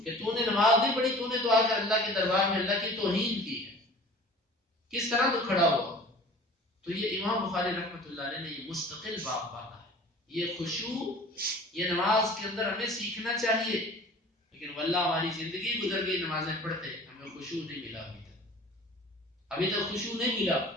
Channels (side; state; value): both; normal; correlation 0.43